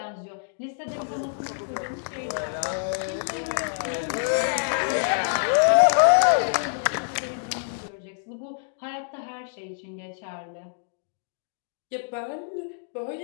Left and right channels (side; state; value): right; silent; digital silence